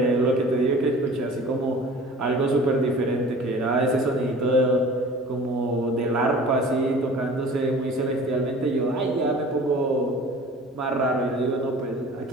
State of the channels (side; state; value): both; normal; correlation 0.43